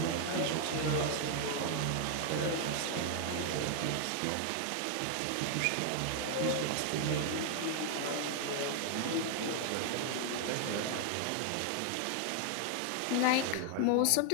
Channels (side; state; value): both; different; correlation 0.00